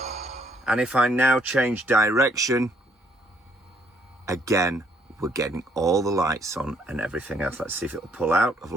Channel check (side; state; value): both; normal; correlation 0.67